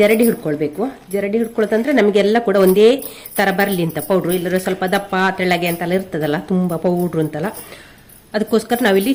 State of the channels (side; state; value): both; identical; correlation 1.00